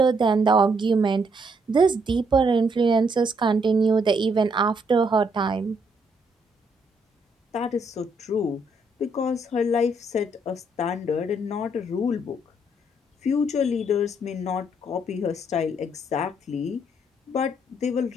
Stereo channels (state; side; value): normal; both; correlation 0.72